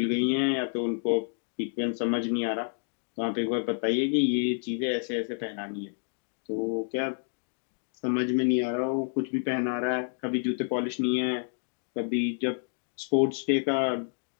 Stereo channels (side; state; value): right; silent; 57 dB below the other